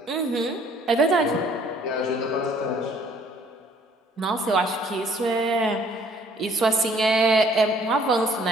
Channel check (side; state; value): both; normal; correlation 0.59